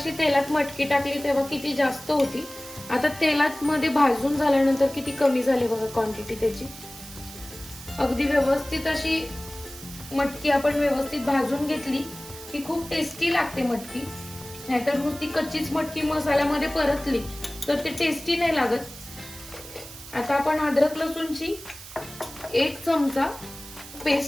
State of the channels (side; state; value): right; noise; hiss, 15 dB below the sound